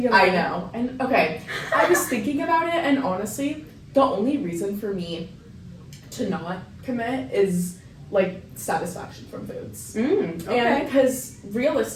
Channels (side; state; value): both; identical; correlation 1.00